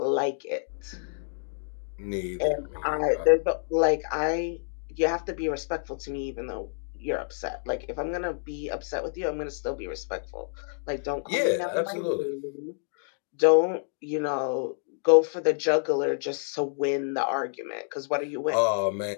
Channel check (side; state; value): right; silent; digital silence